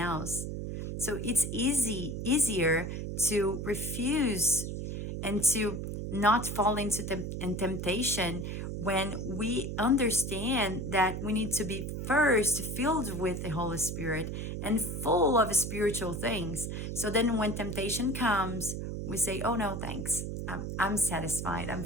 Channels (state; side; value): noise; right; hum, 4 dB below the sound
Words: So it's easier to refuse and to not fall into temptation when we understand that we need to be first filled with the Holy Spirit and full of spiritual things. So then when temptation comes, we say, oh no, thanks. I'm satisfied. I'm